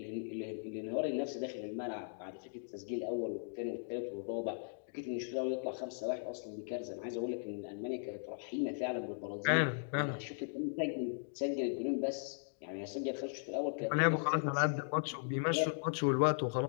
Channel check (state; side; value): silent; right; digital silence